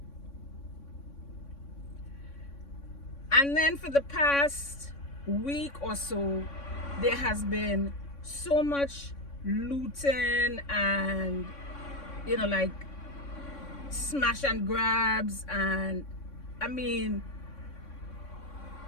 And then for the past week or so, there has been so much looting and like smash and grabs, and I mean,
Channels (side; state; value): right; late; 3.6 ms